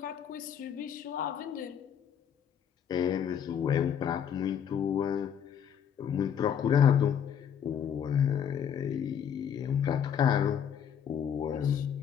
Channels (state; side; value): quieter; right; 8.4 dB